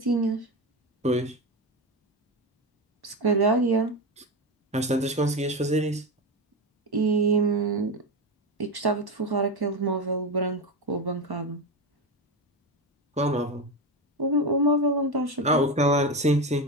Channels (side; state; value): both; normal; correlation 0.17